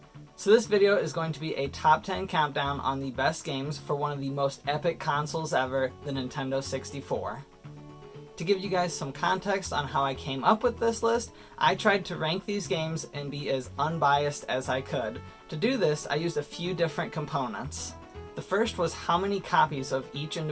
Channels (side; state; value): both; identical; correlation 1.00